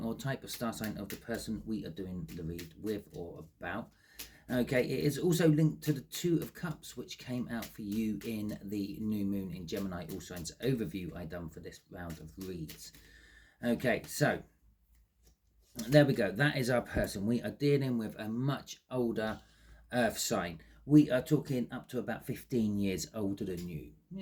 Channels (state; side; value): identical; both; correlation 1.00